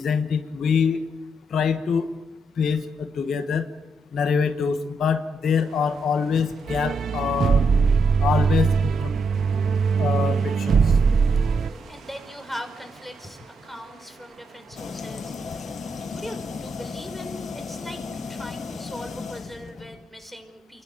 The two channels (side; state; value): both; normal; correlation 0.79